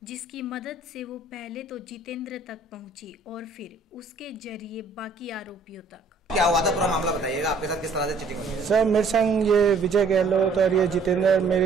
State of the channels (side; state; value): left; quieter; 3.9 dB